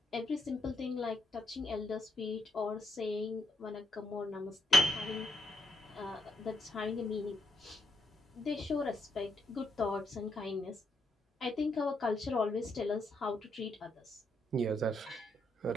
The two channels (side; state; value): both; normal; correlation 0.77